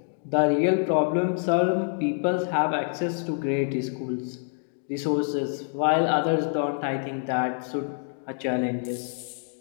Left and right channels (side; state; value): right; silent; 60 dB below the other